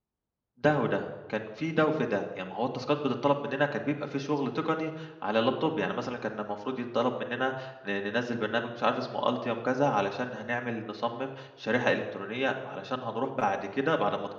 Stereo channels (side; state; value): both; identical; correlation 1.00